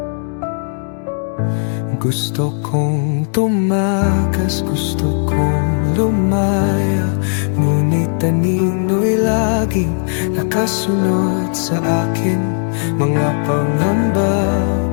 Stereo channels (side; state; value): right; silent; digital silence